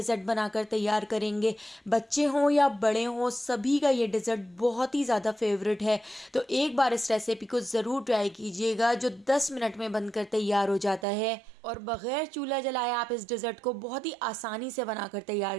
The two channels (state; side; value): drops out; left; at 11.1 s